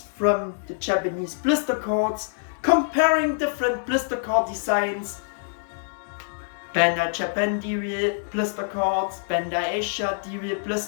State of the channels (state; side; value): silent; right; digital silence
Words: from the Japanese blister cards, comparing different blister card designs, Bandai Japan D-Real blister cards, Bandai Asia D-Real